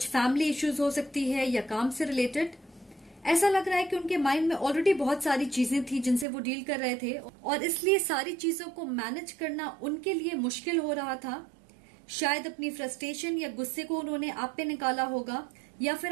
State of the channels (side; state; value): left; drops out; at 6.2 s